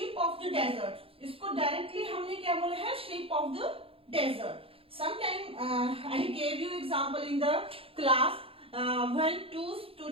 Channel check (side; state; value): left; late; 0.27 ms